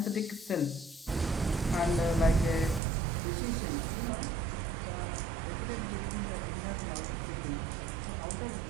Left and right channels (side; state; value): left; drops out; at 2.8 s